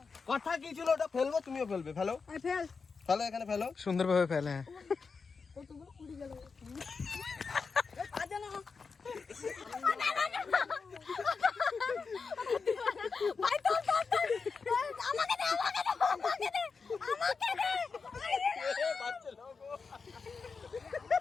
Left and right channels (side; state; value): right; quieter; 5.0 dB